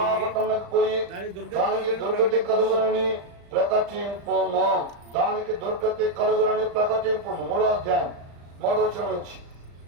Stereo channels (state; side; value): late; left; 35 ms